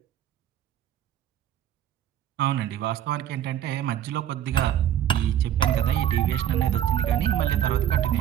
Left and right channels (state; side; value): quieter; left; 10.8 dB